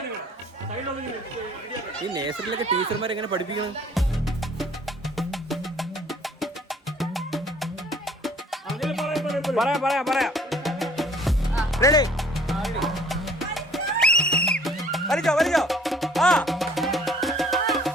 ഈ നേഴ്സറിയിലൊക്കെ ടീച്ചർമാരെ എങ്ങനെ പഠിപ്പിക്കണം? പറയാം. റെഡി? വലിച്ചോ. ആ,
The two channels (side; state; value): both; normal; correlation 0.56